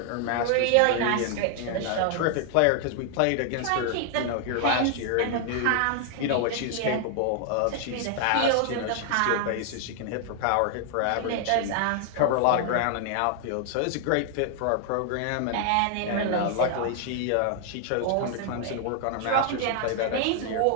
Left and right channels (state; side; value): different; both; correlation 0.00